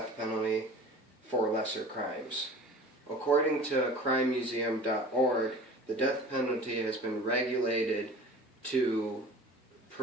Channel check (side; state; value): both; normal; correlation 0.41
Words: penalty for lesser crimes. According to crimemuseum.org, the death penalty has been regulated to